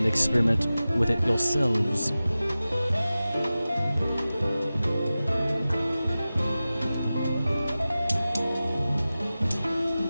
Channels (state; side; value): inverted; both; correlation -0.96